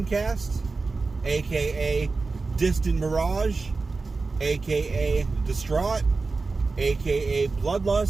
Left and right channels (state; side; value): quieter; left; 4.0 dB